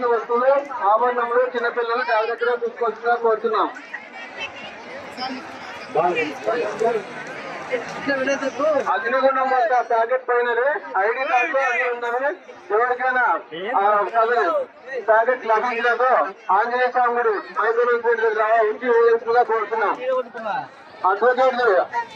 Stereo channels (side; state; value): both; identical; correlation 1.00